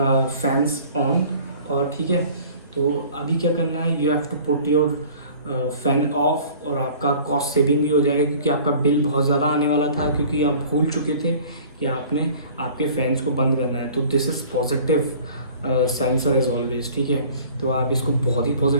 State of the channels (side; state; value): both; inverted; correlation -0.48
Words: on, और ठीक है, तो अभी क्या करना है, you have to put your fan off, और आपका कॉस्ट सेविंग भी हो जाएगा क्योंकि आपका बिल बहुत ज़्यादा आने वाला था क्योंकि आप भूल चुके थे कि आपने आपके फैंस को बंद करना है। तो this is positive sensor is always, ठीक है, तो आप इसको बहुत ही